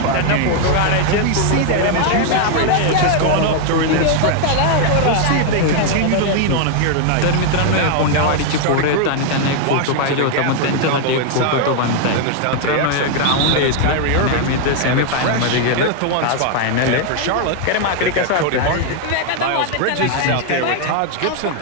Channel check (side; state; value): both; different; correlation 0.00